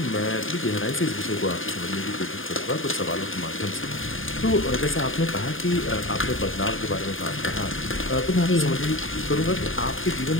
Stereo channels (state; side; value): late; right; 0.59 ms